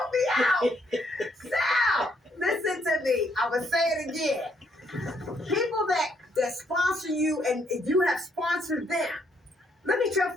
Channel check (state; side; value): normal; both; correlation 0.72